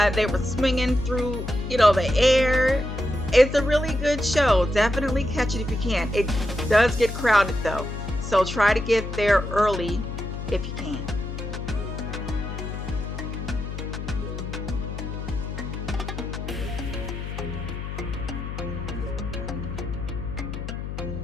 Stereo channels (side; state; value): left; noise; hum, 6 dB below the sound